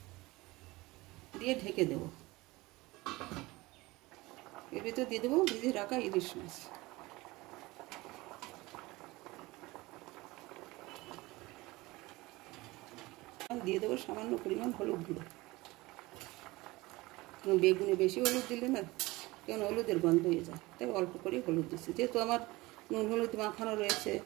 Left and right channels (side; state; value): left; quieter; 21.1 dB